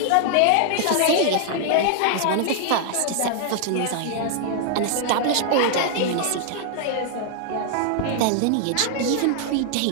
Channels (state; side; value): different; both; correlation -0.01